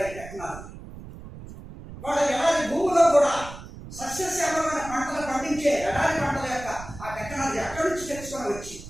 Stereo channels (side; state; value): right; noise; rumble, 14 dB below the sound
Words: టెక్నాలజీ. వాళ్ళ ఎడారి భూమిలో కూడా సస్యశ్యామలమైన పంటలు పండించే ఎడారి పంటల యొక్క ఆ టెక్నాలజీ అక్కడి నుంచి తెచ్చుకొని వచ్చి